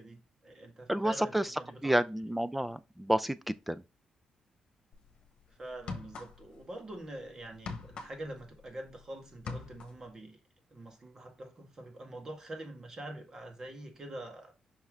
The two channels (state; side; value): normal; both; correlation 0.96